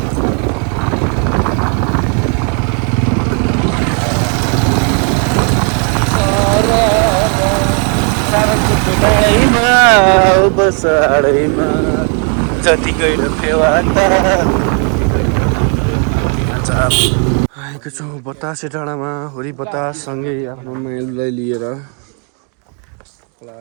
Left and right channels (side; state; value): left; quieter; 38.8 dB